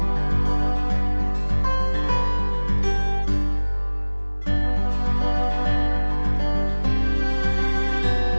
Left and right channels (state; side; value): inverted; both; correlation -1.00